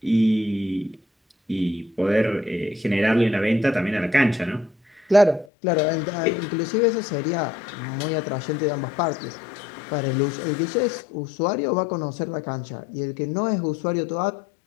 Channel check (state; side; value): drops out; right; at 5.5 s